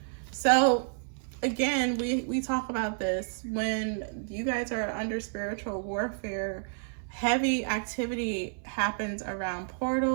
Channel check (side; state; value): left; silent; 58 dB below the other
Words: So again, we talk about this when you guys are under spiritual warfare. Heavy activity happens around